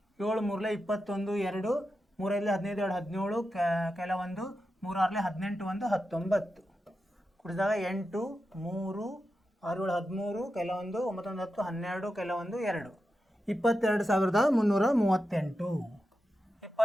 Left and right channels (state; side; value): normal; both; correlation 0.89